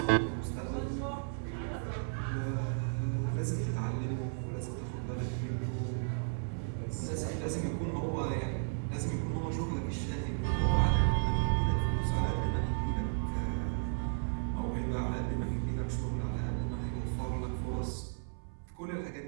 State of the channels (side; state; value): left; silent; 55 dB below the other